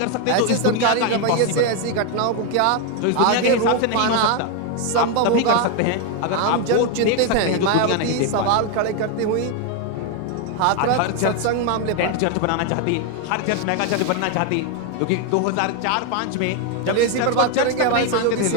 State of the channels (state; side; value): different; both; correlation 0.01